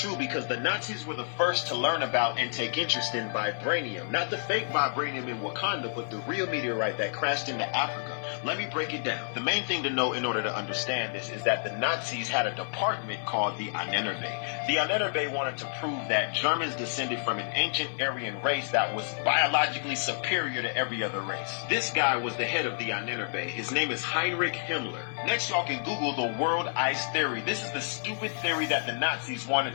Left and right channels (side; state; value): right; silent; digital silence